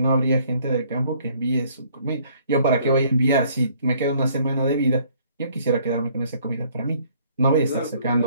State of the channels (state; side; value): inverted; both; correlation -0.61